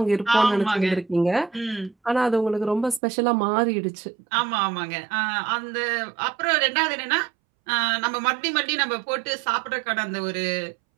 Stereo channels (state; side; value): drops out; left; at 3.0 s